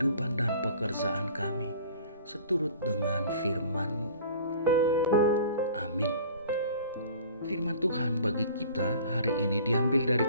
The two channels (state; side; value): inverted; both; correlation -0.46